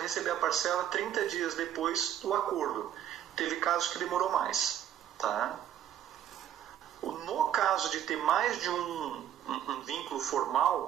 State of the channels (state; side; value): quieter; left; 10.6 dB